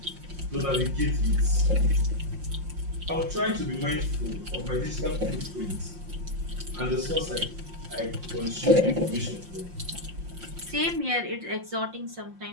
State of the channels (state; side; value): late; left; 5.7 ms